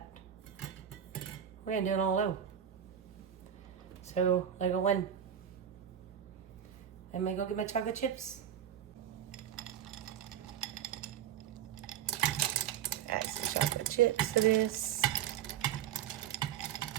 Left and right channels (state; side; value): quieter; left; 9.7 dB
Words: We're gonna do it all low. So, like a 1. I'm gonna go get my chocolate chips. Add some chocolate chips to this.